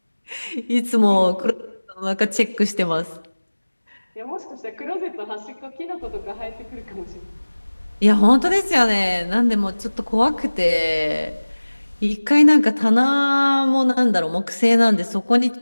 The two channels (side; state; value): both; inverted; correlation -1.00